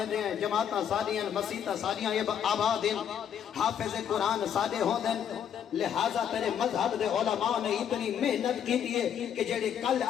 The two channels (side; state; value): right; quieter; 8.8 dB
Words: ہیں جماعتاں سادیاں مسیتاں سادیاں یہ آباد ہیں حافظ قرآن سادے ہوندے لہذا تیرے مذہب دے علماء نے اتنی محنت کی دیئے کہ جڑے کل